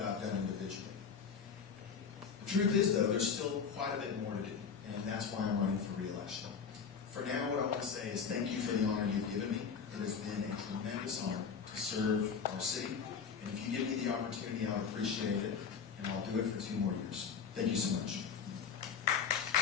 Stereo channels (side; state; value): right; quieter; 6.4 dB